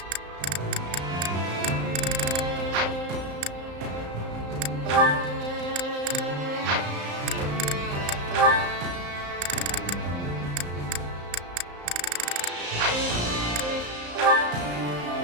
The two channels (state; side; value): late; left; 34 ms